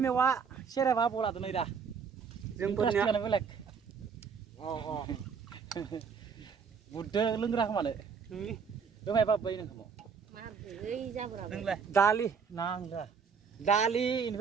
मेवा सेरेबा आबौ लादो नै दा जोंफोरनियानो बेलेग बुददो लोंग्रा खोमानो दोहाय बाबै नोंखौ दालि नांला दालि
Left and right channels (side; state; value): left; quieter; 6.2 dB